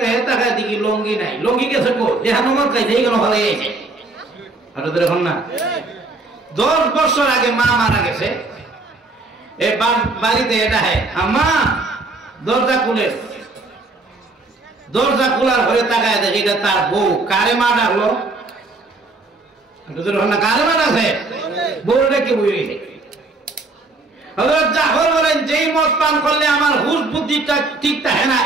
হেতা খাই দেখি লঙ্গি নাই। লঙ্গি গেছে কো, যেখানে মদ খাইছে এইগুলো হলে গেছে। এখন না 10 বছর আগে মা মারা গেছে, বাড়িতে এটা হয় আম্মা দরজা খুলে, দরজা খোলার ঘরে তাকায় দেখে এটা তার বউ। কারে মা ডাকলো? কারে মা ডাকছে? বউটা কি বই রয়েছে। হযরত জাফর বলেন, যেই মদ পান করলে আমার হুঁশ বুদ্ধিটা ঠিক থাকে না,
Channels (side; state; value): left; quieter; 3.3 dB